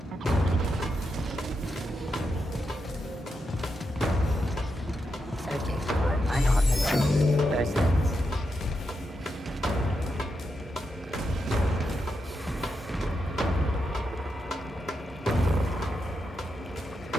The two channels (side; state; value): both; normal; correlation 0.85